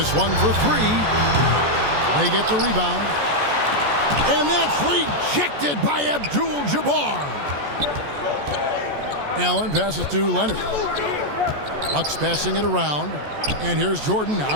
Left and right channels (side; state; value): left; late; 14 ms